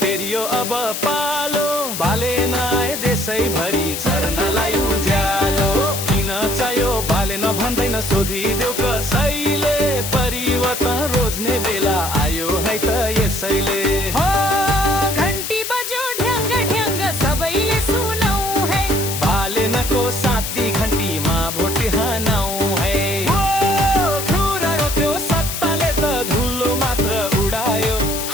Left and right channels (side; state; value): left; noise; hiss, 5 dB below the sound